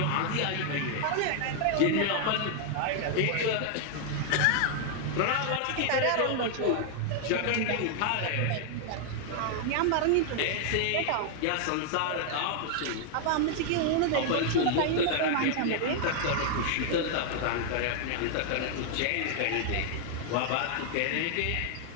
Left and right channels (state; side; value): different; both; correlation 0.00